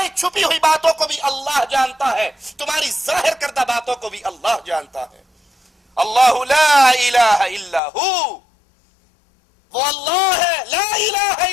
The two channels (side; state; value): right; drops out; at 7.8 s